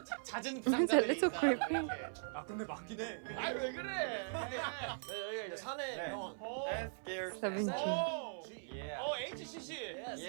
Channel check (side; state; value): left; silent; 51 dB below the other